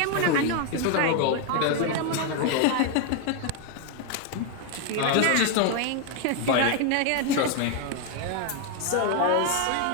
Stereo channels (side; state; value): both; different; correlation 0.00